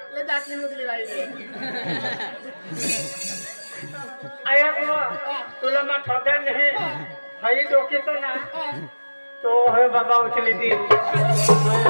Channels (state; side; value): inverted; both; correlation -1.00